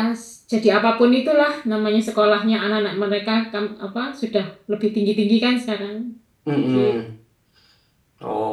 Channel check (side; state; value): both; identical; correlation 1.00